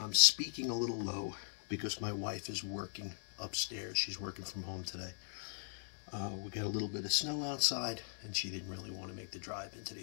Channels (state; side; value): silent; right; digital silence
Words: speaking a little low because my wife is working upstairs. She's working from home today. We got a little bit of snow outside, and she didn't really want to make the drive into